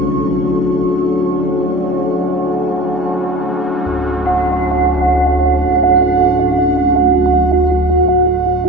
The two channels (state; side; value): normal; both; correlation 0.40